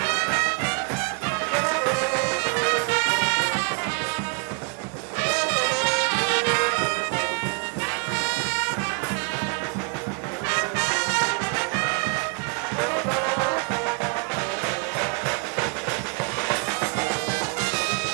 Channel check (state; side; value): quieter; left; 37.8 dB